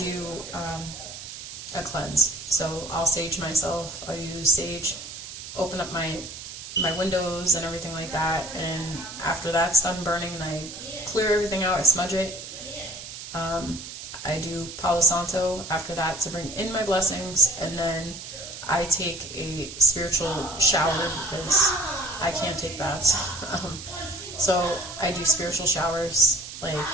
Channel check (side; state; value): right; noise; hiss, 11 dB below the sound